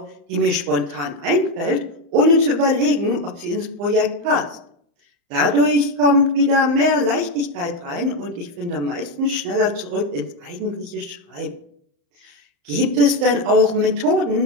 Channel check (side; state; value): left; late; 35 ms